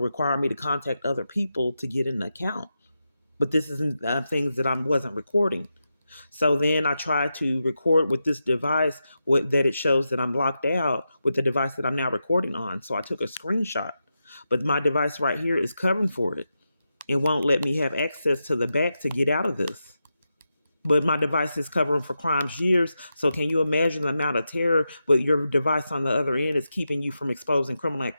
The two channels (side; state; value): both; inverted; correlation -0.88